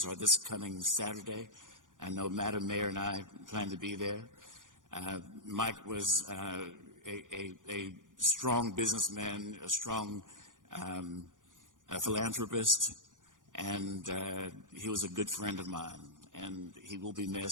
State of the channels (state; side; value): late; left; 0.88 ms